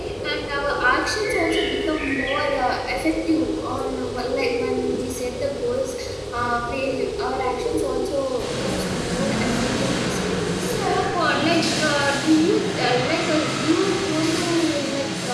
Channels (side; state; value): both; identical; correlation 1.00